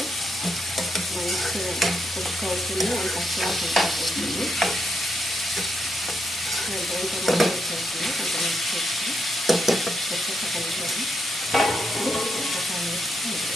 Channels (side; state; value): both; normal; correlation 0.80